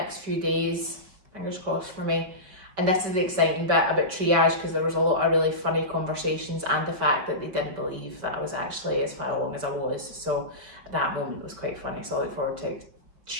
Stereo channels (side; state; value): left; late; 5.2 ms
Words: few days. Fingers crossed for me. And this is the exciting bit about triage, because there was a lot of really funny conversations and the fact that they didn't believe that I was actually as far along as I was. So that moment was quite funny. So I look forward to